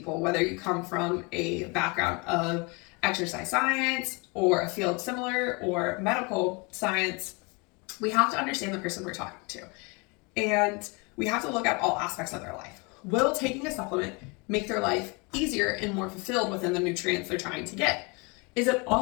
whether you come from a background of exercise science or a field similar or medical science, we have to understand the person we're talking to. And we have to look at all aspects of their life. Will taking a supplement make their life easier and more fulfilled within the nutrients they're trying to get? Is it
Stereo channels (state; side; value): quieter; right; 29.6 dB